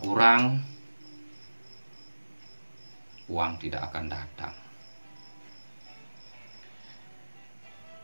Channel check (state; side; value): inverted; both; correlation -1.00